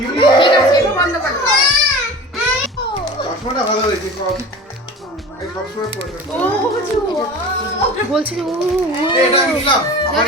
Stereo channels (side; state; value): both; normal; correlation 0.37